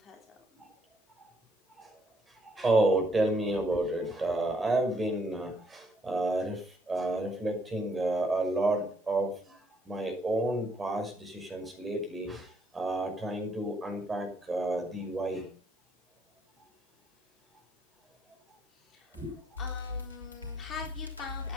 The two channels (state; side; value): normal; both; correlation 0.69